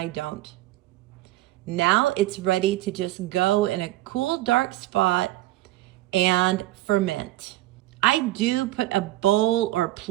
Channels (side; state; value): left; quieter; 16.4 dB